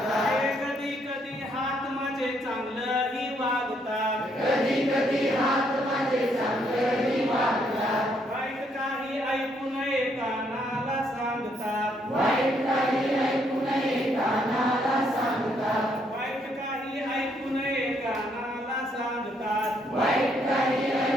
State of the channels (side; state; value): both; normal; correlation 0.72